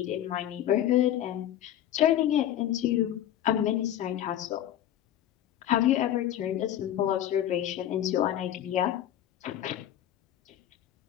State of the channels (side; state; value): right; quieter; 11.6 dB